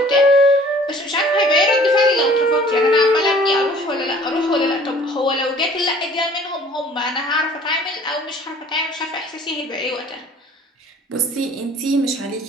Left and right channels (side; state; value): both; normal; correlation 0.52